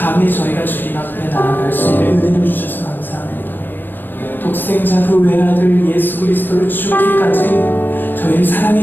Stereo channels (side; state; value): right; late; 0.092 ms